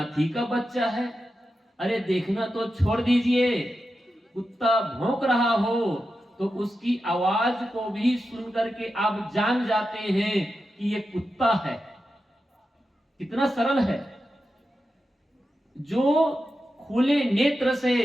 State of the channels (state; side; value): normal; both; correlation 0.90